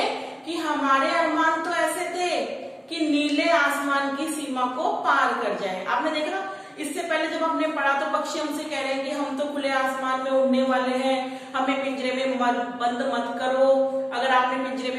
कि हमारे अरमान तो ऐसे थे कि नीले आसमान की सीमा को पार कर जाए। आपने देखा इससे पहले जब हमने पढ़ा तो पक्षी हमसे कह रहे हैं कि हम तो खुले आसमान में उड़ने वाले हैं, हमें पिंजरे में बंद मत करो। अगर आपने पिंजरे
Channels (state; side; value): identical; both; correlation 1.00